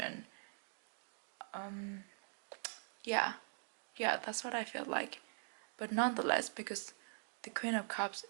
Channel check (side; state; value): left; silent; digital silence